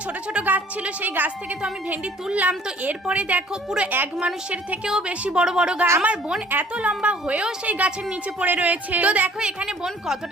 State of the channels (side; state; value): both; normal; correlation 0.54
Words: ছোট ছোট গাছ ছিল সেই গাছ থেকে তো আমি ভেন্ডি তুললাম। তো এরপরে দেখো পুরো এক মানুষের থেকেও বেশি বড় বড় গাছ। আমার বোন এত লম্বা হয়েও সেই গাছের নিচে পড়ে রয়েছে। তো দেখো এখানে বোন